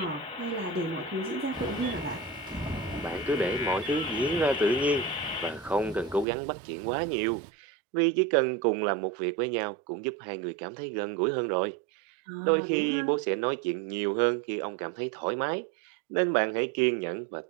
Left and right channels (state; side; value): drops out; left; at 6.2 s